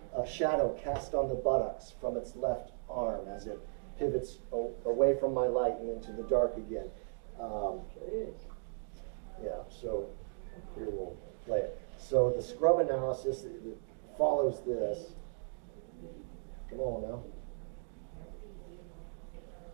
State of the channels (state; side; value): silent; left; digital silence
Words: a shadow cast on the buttocks from its left arm as it pivots away from my light and into the dark again. Yeah, so here we'll play it. So the scrub analysis that follows this. Come on now.